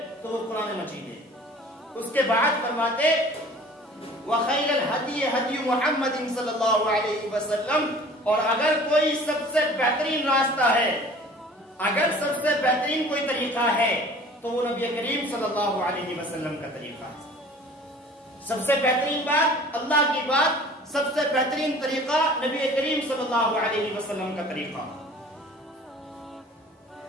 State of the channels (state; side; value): normal; both; correlation 0.47